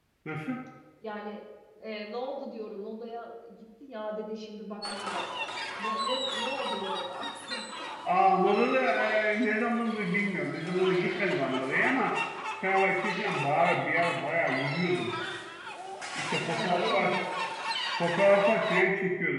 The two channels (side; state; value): both; identical; correlation 1.00